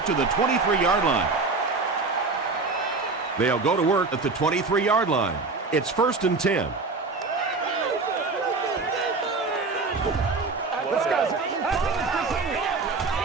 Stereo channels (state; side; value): quieter; left; 4.0 dB